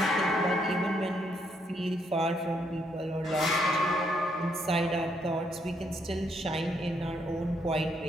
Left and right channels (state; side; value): normal; both; correlation 0.74